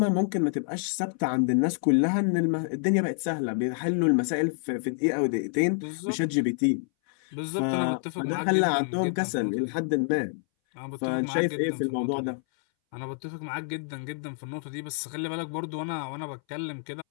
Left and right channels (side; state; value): right; silent; 60 dB below the other